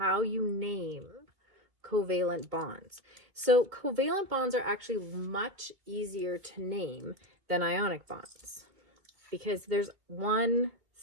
you name covalent bonds. So covalent bonds are actually much easier to name than ionic bonds because there's one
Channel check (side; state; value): left; late; 2.4 ms